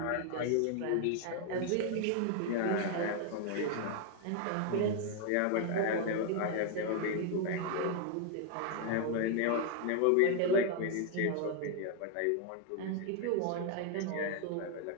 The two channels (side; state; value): both; different; correlation 0.00